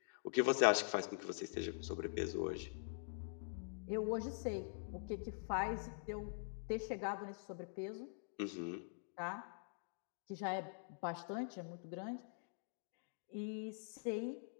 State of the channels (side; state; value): right; silent; digital silence